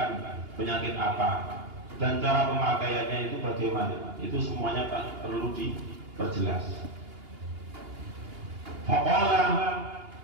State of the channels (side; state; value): left; late; 2.8 ms